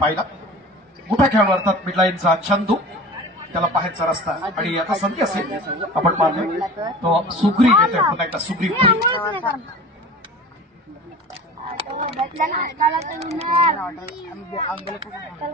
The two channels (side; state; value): both; normal; correlation 0.38